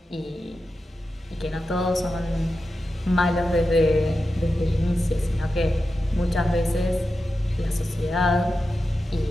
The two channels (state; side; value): normal; both; correlation 0.91